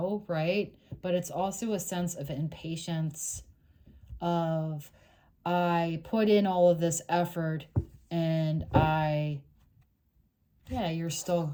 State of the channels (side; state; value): both; identical; correlation 1.00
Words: right? But it's also a sense of impatience of, I put in all of this effort and you're